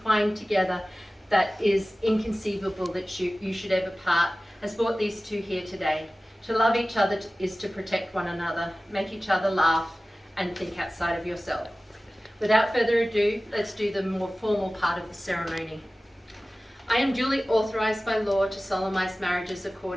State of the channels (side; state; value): both; normal; correlation 0.97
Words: together, that is inconceivable that you should ever part," has brought these two here today. To love each other is to protect one another, make each other laugh, and think outside of yourself. Without further ado, let's do the more formal part of the ceremony. I am duly authorised by law to solemnise marriages